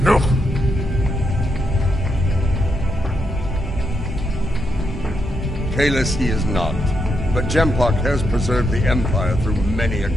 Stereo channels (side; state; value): both; normal; correlation 0.81